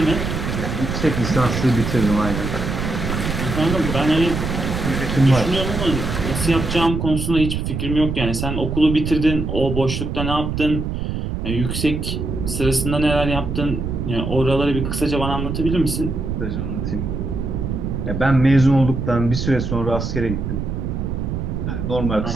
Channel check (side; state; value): right; noise; rumble, 3 dB below the sound